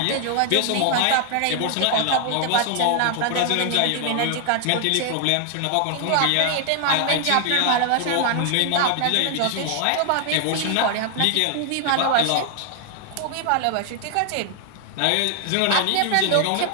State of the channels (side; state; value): both; different; correlation 0.00